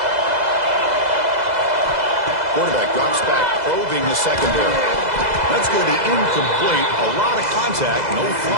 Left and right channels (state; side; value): late; left; 2.0 ms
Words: Quarterback drops back, probing the secondary. That's going to be incomplete. A lot of contact, no